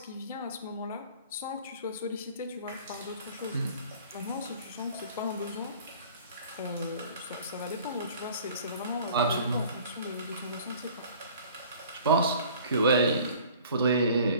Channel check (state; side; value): inverted; both; correlation -0.48